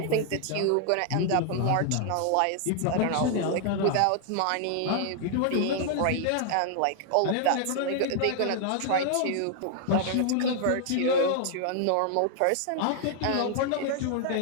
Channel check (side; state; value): both; different; correlation 0.00